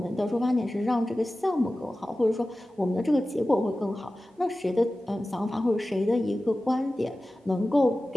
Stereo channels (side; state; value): both; normal; correlation 0.96